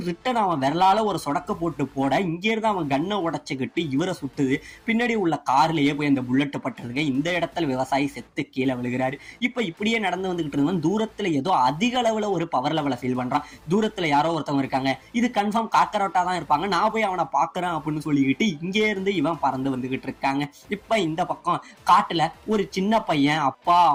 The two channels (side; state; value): both; identical; correlation 1.00